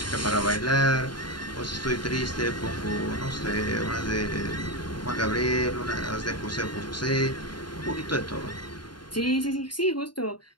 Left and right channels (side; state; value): right; late; 0.71 ms